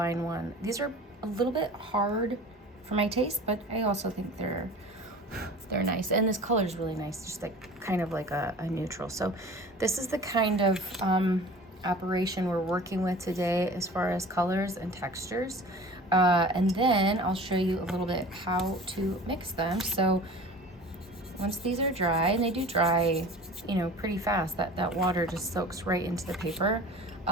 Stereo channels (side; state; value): both; normal; correlation 0.41